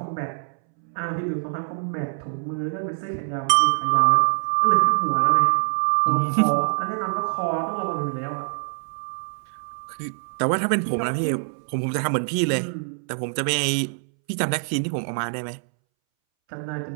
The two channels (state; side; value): silent; left; 62 dB below the other